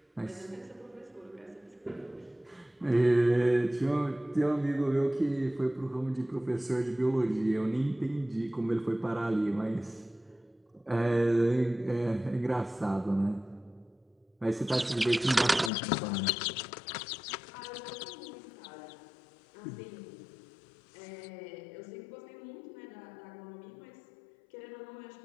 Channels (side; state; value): right; drops out; at 15.7 s